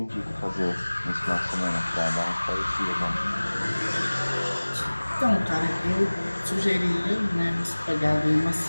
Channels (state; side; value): inverted; both; correlation -1.00